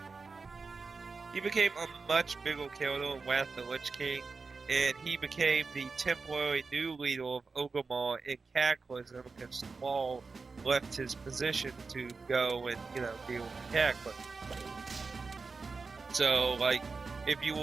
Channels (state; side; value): quieter; left; 4.4 dB